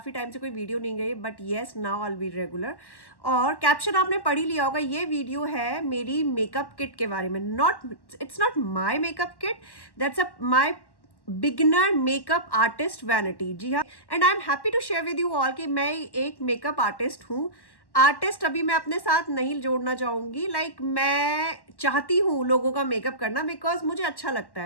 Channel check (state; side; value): late; right; 1.1 ms